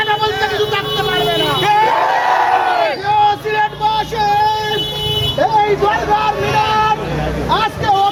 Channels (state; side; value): identical; both; correlation 1.00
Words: বলতে কিছু থাকতে পারবে না। সিলেটবাসী, এই দরবার মিনার আজকে